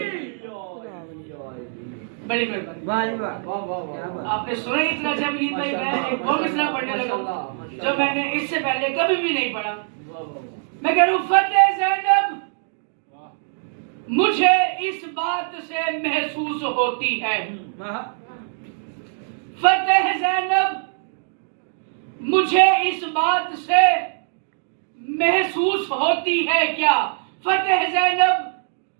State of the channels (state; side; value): silent; left; digital silence